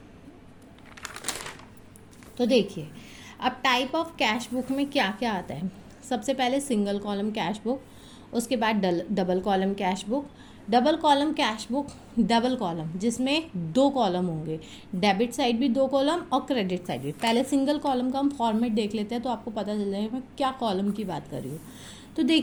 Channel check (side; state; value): both; identical; correlation 1.00